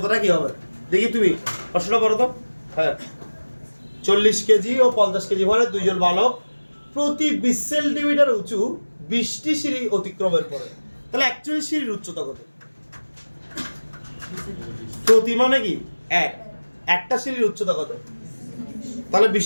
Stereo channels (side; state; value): both; inverted; correlation -1.00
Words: কি হবে, দেখি তুমি প্রশ্নটা করো তো। হ্যাঁ, 40 কেজি ও 50 কেজি ভরে দুইজন বালক প্রতি 20 সেন্টিমিটার উঁচু 20টি সিঁড়ি অতিক্রমের পরে, তাহলে অ্যাকচুয়ালি সিঁড়ির উচ্চতা কত? প্রতি মানে কি একটা সিঁড়ির উচ্চতা কত? তাহলে